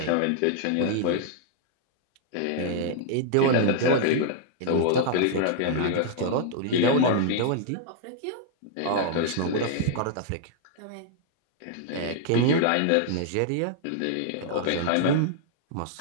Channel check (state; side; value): different; both; correlation 0.00